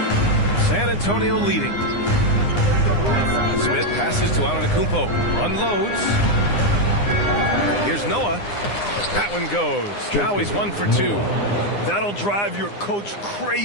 San Antonio leading. Smith passes to Antetokounmpo. Unloads. Here's Noah. That one goes. Now he's 1 for 2. That'll drive your coach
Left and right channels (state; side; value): late; right; 9.8 ms